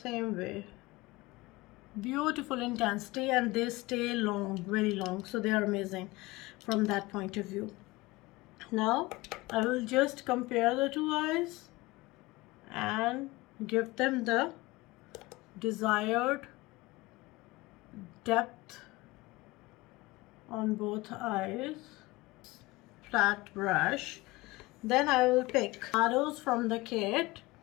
way. Beautiful intensity, and they stay long, very long, so they are amazing from that point of view. Now I will just compare the two eyes and give them the desired depth on both eyes. Flat brush. Then I will pick shadows from the kit,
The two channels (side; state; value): right; quieter; 21.1 dB